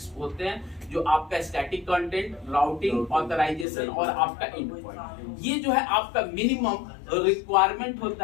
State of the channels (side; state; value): right; drops out; at 3.7 s